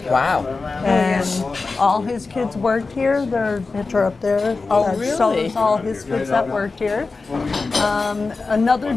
Wow. And all his kids worked here. Their picture up there. Oh, really? Shows all his kids that worked here. Another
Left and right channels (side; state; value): right; quieter; 4.0 dB